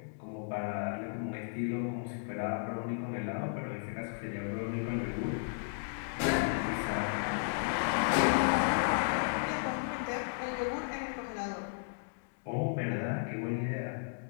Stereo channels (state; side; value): silent; right; digital silence